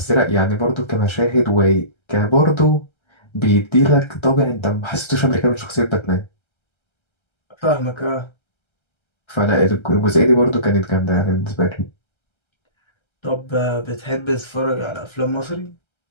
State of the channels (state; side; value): late; right; 1.3 ms